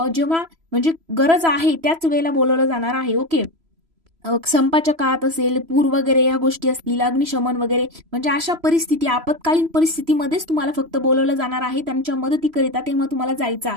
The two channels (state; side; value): late; left; 3.0 ms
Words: जेव्हा म्हणजे गरज आहे त्याच वेळेला बोलवलं जाणार आहे, ओके। संपाच्या काळात असेल, पूर वगैरे या गोष्टी असतील, अग्निशमन वगैरे, म्हणजे अशा परिस्थिती आपत्कालीन परिस्थितीमध्येच तुम्हाला फक्त बोलवलं जाणार आहे त्यांच्या मदतीकरिता, तेव्हा तुम्हाला जायचं